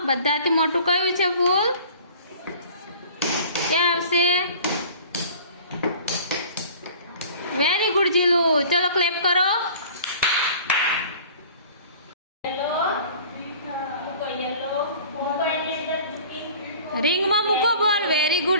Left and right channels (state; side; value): inverted; both; correlation -0.46